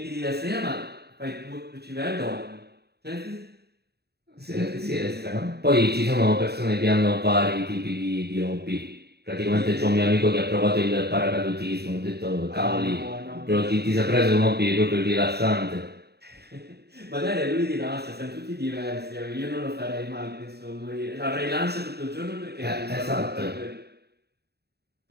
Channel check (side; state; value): left; late; 0.47 ms